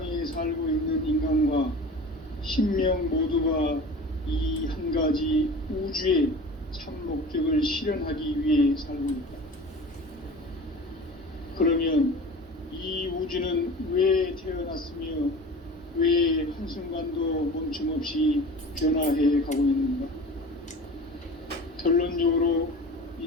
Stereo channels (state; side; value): normal; both; correlation 0.38